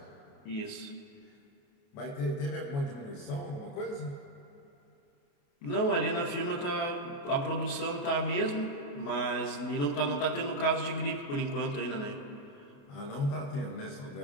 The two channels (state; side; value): late; right; 29 ms